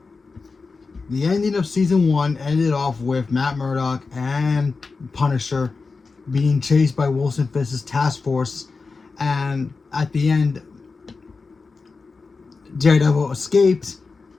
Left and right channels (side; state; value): right; quieter; 4.3 dB